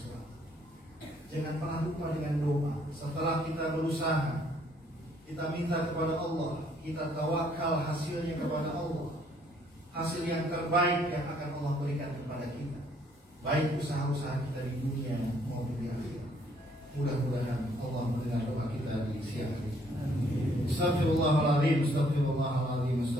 Jangan pernah lupa dengan doa. Setelah kita berusaha, kita minta kepada Allah, kita tawakal hasilnya kepada Allah. Hasil yang terbaik yang akan Allah berikan kepada kita, baik usaha-usaha kita di dunia maupun di akhirat. Mudah-mudahan Allah mendengar doa kita di siang hari. Astaghfirullahaladzim, astaghfirullahaladzim,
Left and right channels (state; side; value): normal; both; correlation 0.65